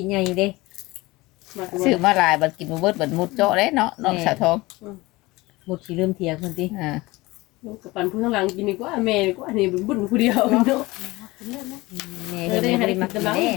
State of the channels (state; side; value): quieter; right; 21.2 dB